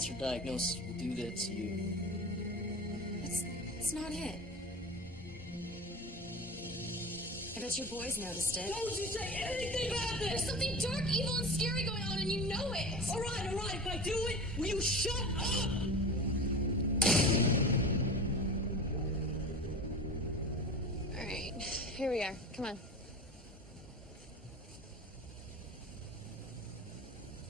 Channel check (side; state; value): both; normal; correlation 0.32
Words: diagnosis will do that to you. It's not it. I bet your boys noticed it. Don't you say anything about this! There's something dark, evil, and scary going on, and you know it! All right, if I do it, will you shut up? All right, here we are. Come on.